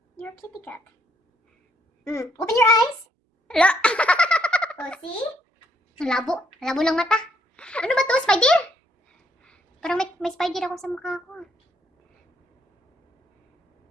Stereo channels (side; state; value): both; normal; correlation 0.71